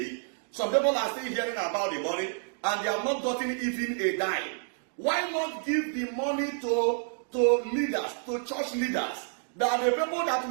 Some people are still hearing about the money and they have not gotten even a dime. Why not give the money to leaders, to church leaders? They are the people that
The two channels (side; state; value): left; silent; digital silence